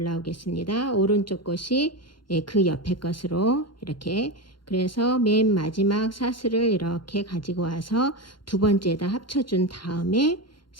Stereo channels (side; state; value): right; late; 0.72 ms